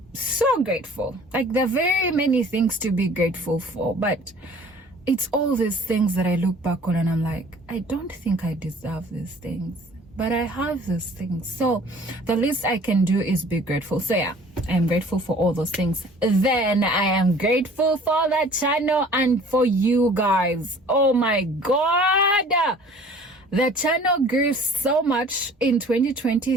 so grateful. Like, there are very many things to be grateful for, but it's all these things that I look back on and I'm like, I don't think I deserve these things, but I have these things. So the least I can do is be grateful. So yeah, I'm grateful for all those things. Then I am grateful for the channel and for you guys. Oh my God. The channel grew so much in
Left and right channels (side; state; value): both; normal; correlation 0.50